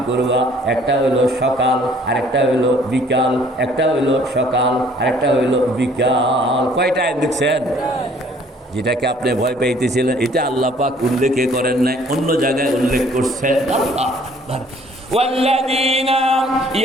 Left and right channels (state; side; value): normal; both; correlation 0.58